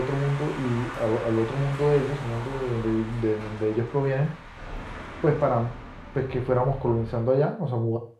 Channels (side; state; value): both; identical; correlation 1.00